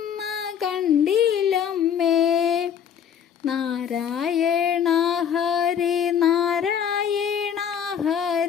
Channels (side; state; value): right; quieter; 8.3 dB